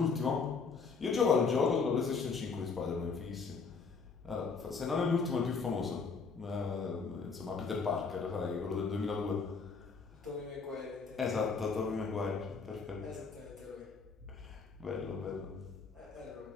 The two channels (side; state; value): right; quieter; 5.0 dB